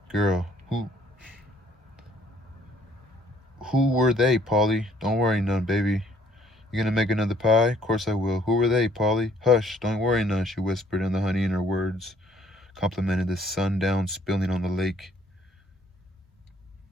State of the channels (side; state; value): both; normal; correlation 0.62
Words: girl. Who were they, Polly?" "Don't worry none, baby. You gonna make another pie?" "Course I will." "Who were they, Polly?" "Hush, don't worry none," she whispered, and the honey in her words complemented the sundown spilling on the lake.